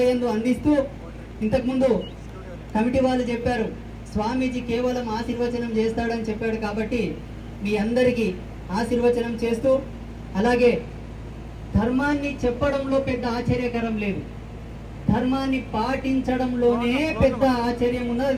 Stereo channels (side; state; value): both; identical; correlation 1.00